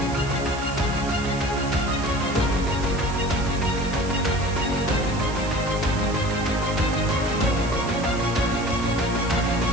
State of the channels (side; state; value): right; noise; hiss, 14 dB below the sound